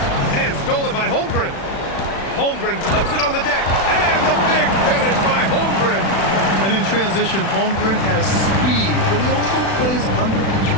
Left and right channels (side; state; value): right; late; 36 ms